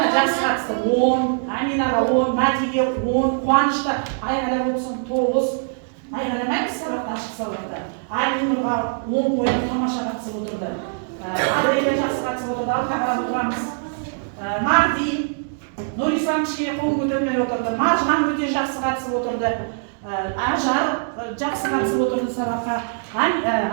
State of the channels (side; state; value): left; silent; digital silence